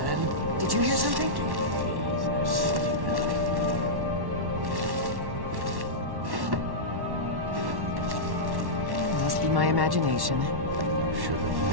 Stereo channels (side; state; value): left; late; 1.1 ms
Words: Did you hear something? Must be my imagination.